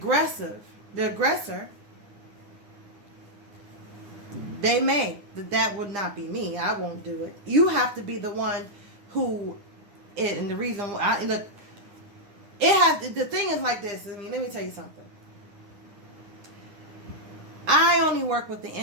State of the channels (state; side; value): late; left; 9.7 ms